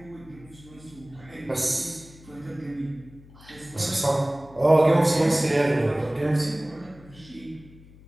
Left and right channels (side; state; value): left; noise; hum, 22 dB below the sound